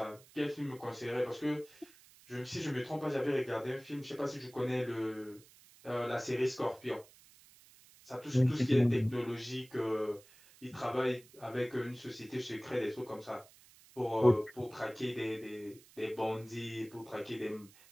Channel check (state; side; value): noise; right; hiss, 24 dB below the sound